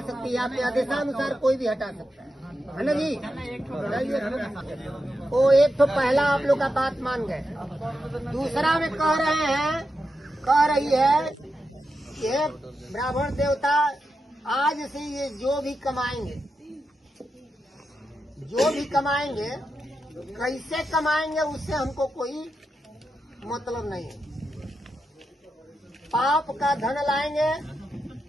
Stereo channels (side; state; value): both; normal; correlation 0.87